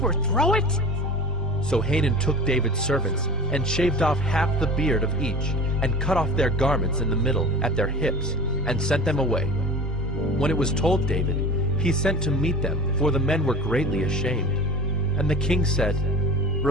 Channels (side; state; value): both; normal; correlation 0.37